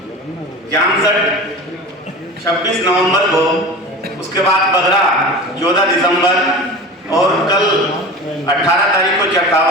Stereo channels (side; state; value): both; normal; correlation 0.33